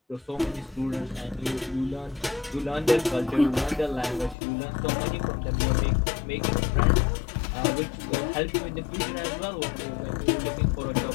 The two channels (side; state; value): right; drops out; at 4.4 s